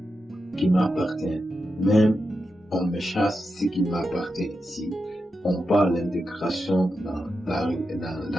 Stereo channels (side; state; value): both; normal; correlation 0.89